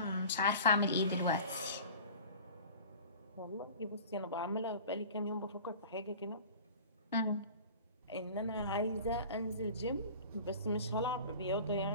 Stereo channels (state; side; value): inverted; both; correlation -0.40